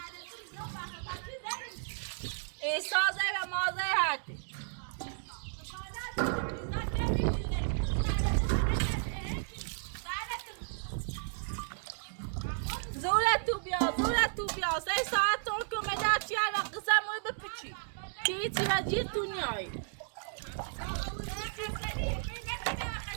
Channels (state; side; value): silent; left; digital silence